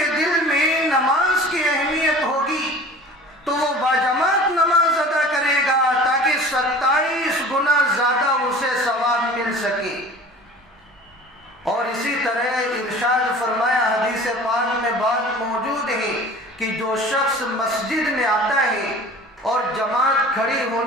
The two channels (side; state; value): both; normal; correlation 0.43